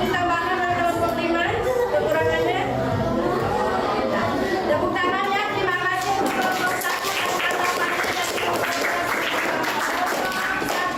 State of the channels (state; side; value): identical; both; correlation 1.00